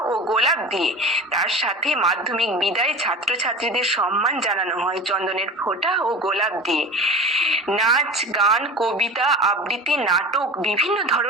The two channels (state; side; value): normal; both; correlation 0.33